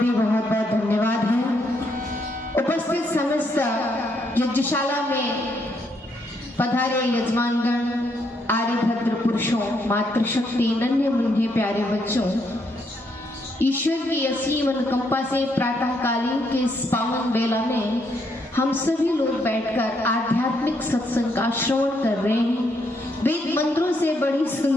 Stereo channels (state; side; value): normal; both; correlation 0.74